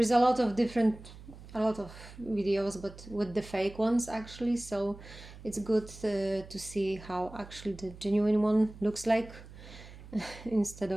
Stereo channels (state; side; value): noise; right; hum, 17 dB below the sound